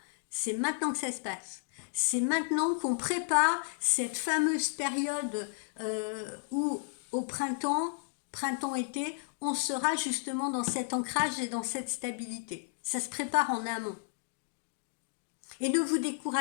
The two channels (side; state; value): right; silent; digital silence